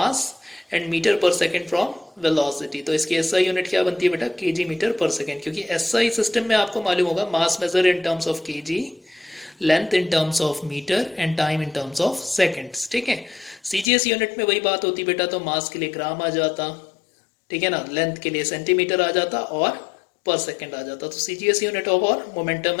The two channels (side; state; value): right; drops out; at 13.9 s